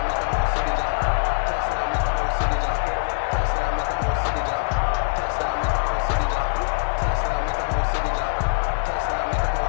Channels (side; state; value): right; silent; 62 dB below the other